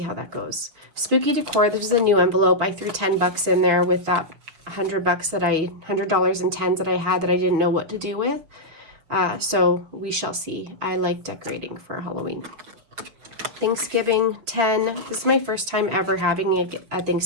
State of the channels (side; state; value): left; late; 6.3 ms